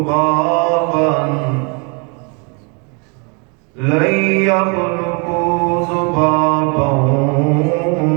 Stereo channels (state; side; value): quieter; left; 34.2 dB